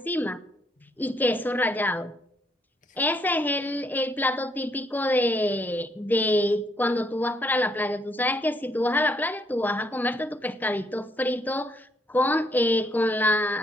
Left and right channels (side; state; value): both; normal; correlation 0.71